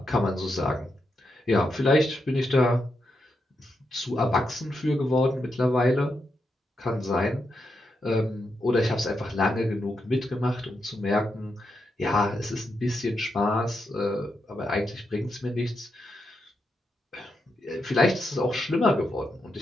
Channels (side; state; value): both; normal; correlation 0.84